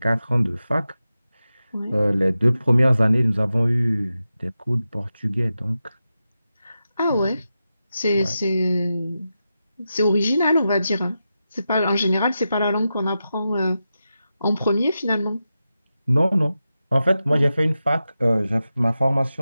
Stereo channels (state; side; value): inverted; both; correlation -0.91